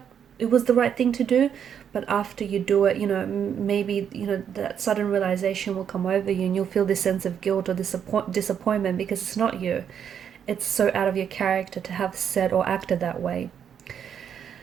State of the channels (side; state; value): left; quieter; 8.3 dB